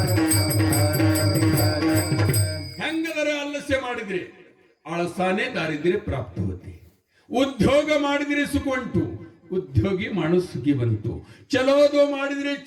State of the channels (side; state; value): both; identical; correlation 1.00